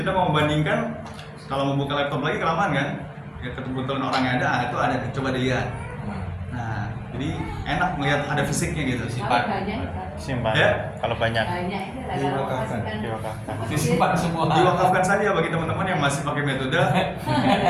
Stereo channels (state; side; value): identical; both; correlation 1.00